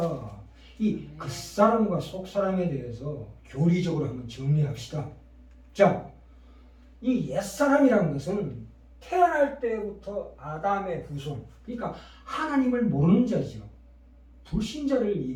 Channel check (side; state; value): both; identical; correlation 1.00